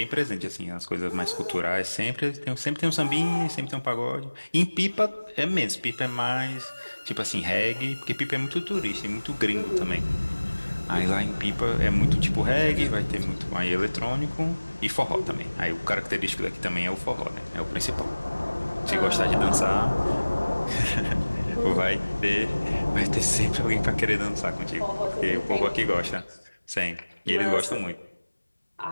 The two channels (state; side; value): inverted; both; correlation -1.00